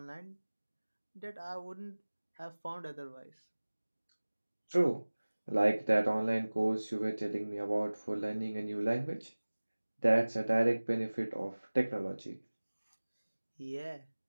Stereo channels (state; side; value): inverted; both; correlation -1.00